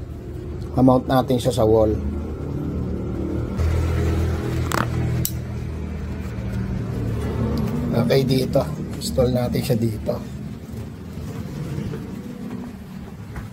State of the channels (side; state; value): both; identical; correlation 1.00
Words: Mount natin siya sa wall. Okay, dito. Install natin siya dito.